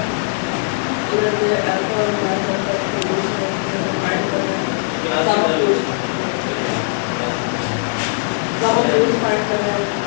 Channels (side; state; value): right; silent; digital silence